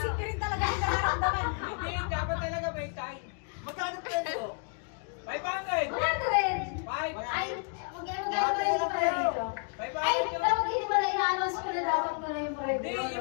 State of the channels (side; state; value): right; quieter; 39.9 dB